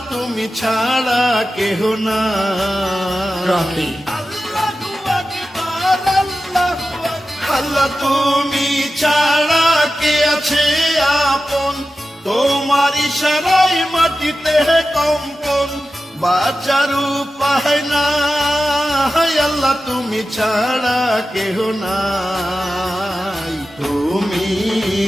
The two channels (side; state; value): both; normal; correlation 0.93